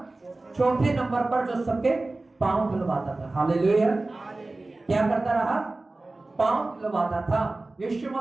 चौथे नंबर पर, जो सबके पांव धुलवाता था। हालेलुया। क्या करता रहा? पांव धुलवाता था। यीशु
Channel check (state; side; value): quieter; left; 3.1 dB